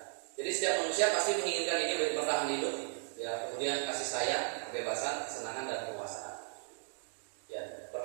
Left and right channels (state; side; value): silent; left; 54 dB below the other